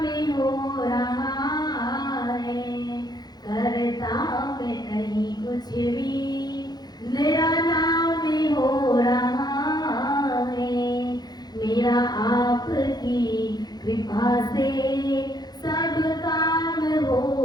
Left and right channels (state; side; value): late; right; 0.19 ms